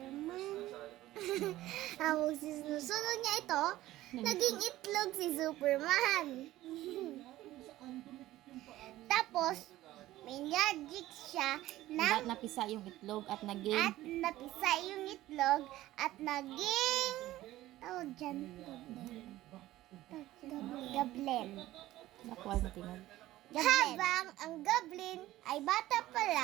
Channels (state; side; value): quieter; left; 15.7 dB